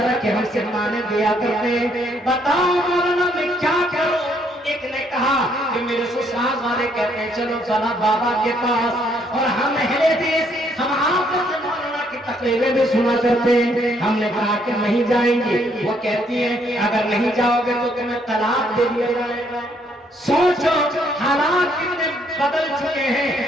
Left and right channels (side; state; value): both; normal; correlation 0.69